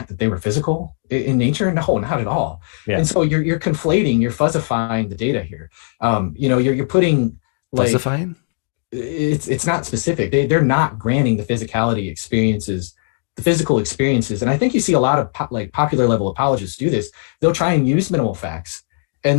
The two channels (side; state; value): right; silent; digital silence